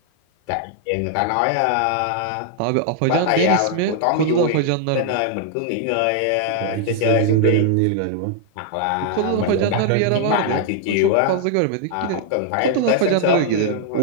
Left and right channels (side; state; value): both; different; correlation 0.00